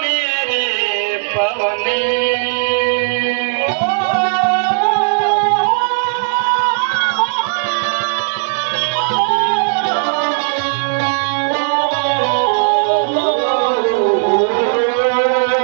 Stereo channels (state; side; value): silent; left; 69 dB below the other